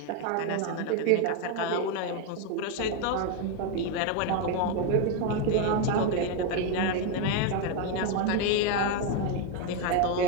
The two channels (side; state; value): both; different; correlation 0.02